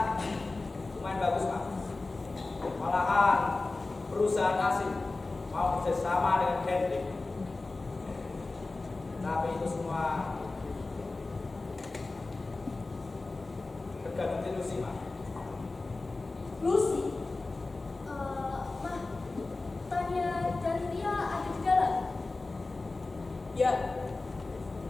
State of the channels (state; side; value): quieter; right; 3.4 dB